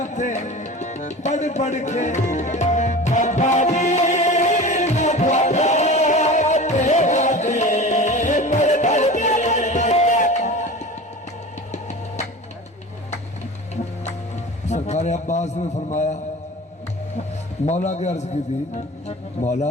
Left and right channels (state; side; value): normal; both; correlation 0.35